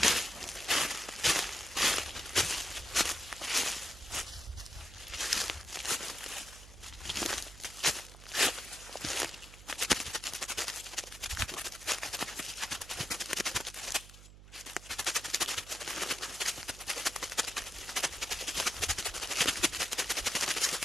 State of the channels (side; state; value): right; noise; hum, 17 dB below the sound